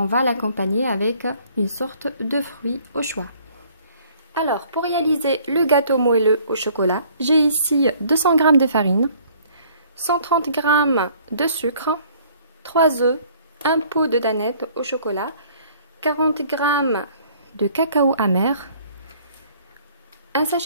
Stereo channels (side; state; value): both; inverted; correlation -0.57